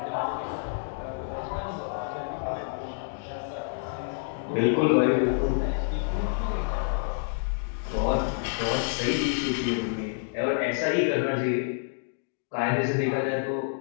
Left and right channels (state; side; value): silent; right; digital silence